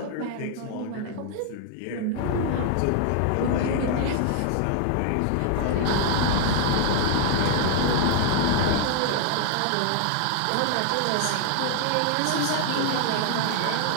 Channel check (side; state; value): both; different; correlation 0.00